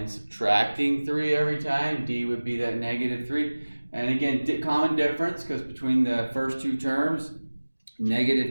subtracting 3 every time. D would be that -3. And again, common difference, because between the first two terms,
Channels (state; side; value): inverted; both; correlation -1.00